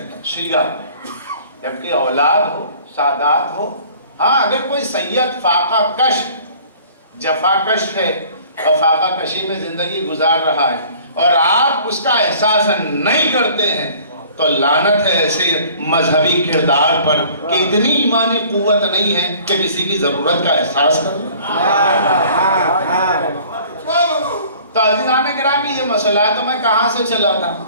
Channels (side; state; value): both; inverted; correlation -0.51